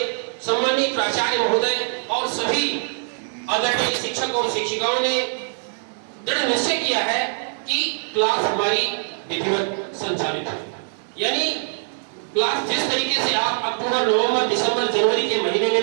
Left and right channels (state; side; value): silent; left; digital silence